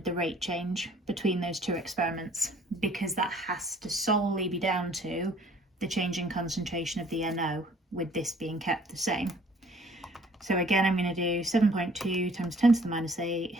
the rate change between those 2 experiments? Because that has to solely be down to the change in concentration of the NO, with this being kept the same. So again, I'm going to do 7.2 times 10 to the minus 8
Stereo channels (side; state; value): both; normal; correlation 0.57